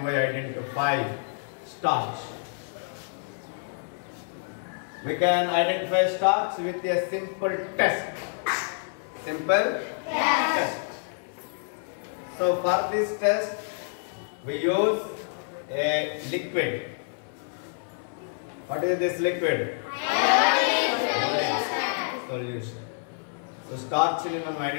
we identify starch? We can identify starch with a simple test. Simple test. So for this test, we use a liquid. What is this liquid? Solution. So starch ni మనం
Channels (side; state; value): right; silent; 57 dB below the other